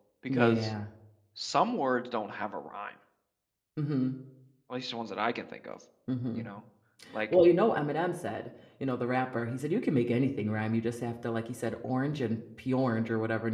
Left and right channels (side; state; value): both; identical; correlation 1.00